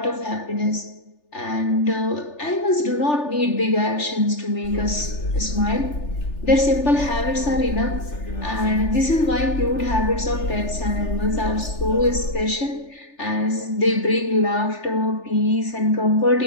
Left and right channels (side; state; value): right; late; 3.4 ms